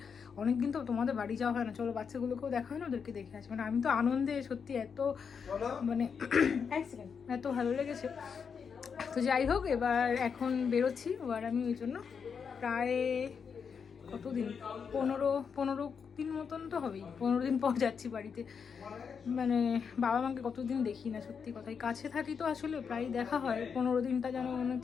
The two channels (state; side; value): quieter; right; 6.4 dB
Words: অনেকদিন তো তোমাদের বাড়ি যাওয়া হয় না, চলো বাচ্চাগুলোকেও দেখা হয় না, ওদেরকে দেখে আসি। মানে আমি তো আনন্দে সত্যি এত মানে এত ভালো লেগেছে। তো যাই হোক, এবার এখন বেরোচ্ছি। এবার আমি ওই জন্য প্রায় কতদিন 15 দিন মতন তো হবেই, 15 দিন পর যাচ্ছি বাড়িতে। মানে বাবা মাকে কতদিন দেখি না, সত্যি কথাই। কাছে থাকি তো আসলে প্রায় দেখা হয়, 15 দিনটা যেন মনে